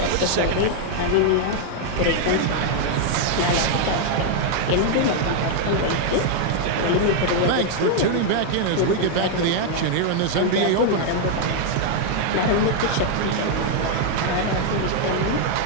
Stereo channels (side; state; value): both; different; correlation 0.00